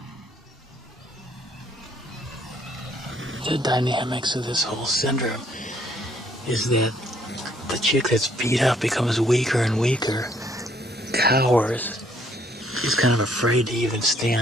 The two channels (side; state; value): both; normal; correlation 0.66